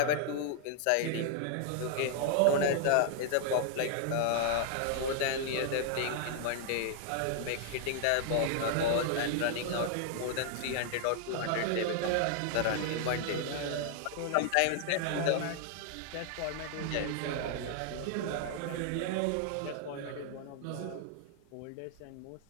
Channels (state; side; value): different; both; correlation 0.00